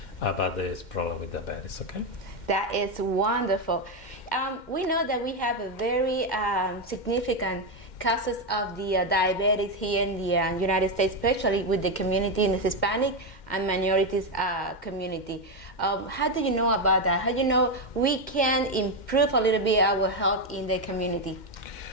about this problem with diabetes. Okay. That is wonderful. We know that we have a very significant cases of the diabetes here in the United States, especially with the community in the Hispanic and minorities community. How do you know about that? How do you know we can improve a little bit our health in the community?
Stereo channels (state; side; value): late; right; 2.1 ms